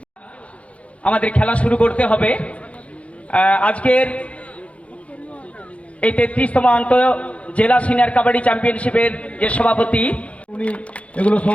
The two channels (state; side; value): late; right; 0.063 ms